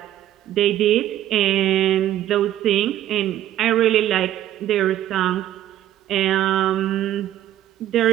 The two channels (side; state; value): left; quieter; 12.7 dB